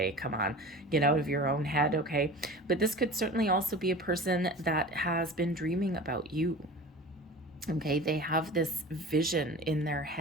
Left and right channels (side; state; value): both; normal; correlation 0.37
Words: come on, get out of your own head, okay? But this could certainly also be a person that has been dreaming about you. Okay, they have this vision in their